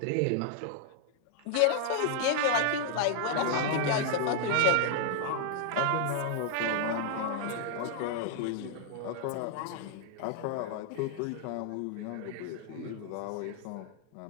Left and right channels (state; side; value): different; both; correlation 0.00